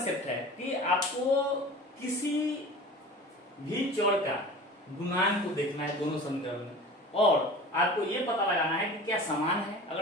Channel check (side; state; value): both; normal; correlation 0.38